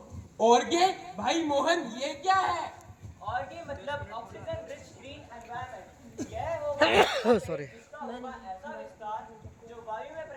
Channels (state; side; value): identical; both; correlation 1.00